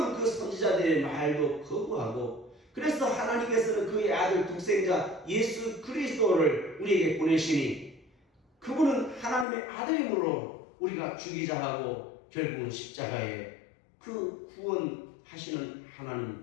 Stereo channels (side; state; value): right; drops out; at 9.5 s